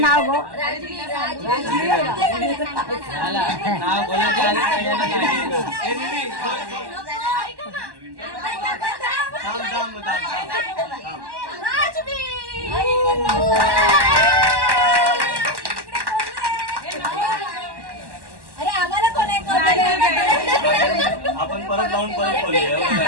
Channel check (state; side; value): late; left; 1.1 ms